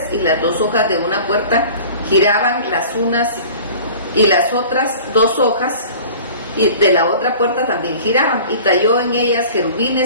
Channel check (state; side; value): inverted; both; correlation -0.43